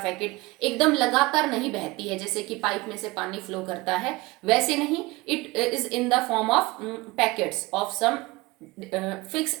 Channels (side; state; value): left; quieter; 22.0 dB